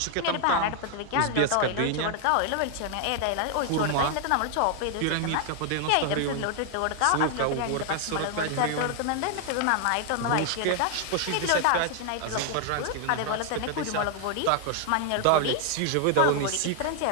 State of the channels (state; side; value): different; both; correlation 0.00